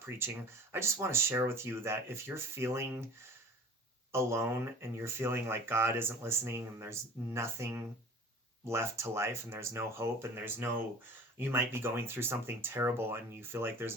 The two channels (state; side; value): normal; both; correlation 0.43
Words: I just want to share with you that if you're feeling alone and you're feeling like God isn't listening and there's nothing left to life and there's no hope and you might be going through something terrible and you feel like there's